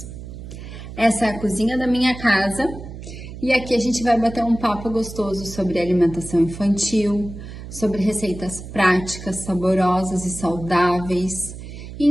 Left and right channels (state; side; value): noise; right; hum, 12 dB below the sound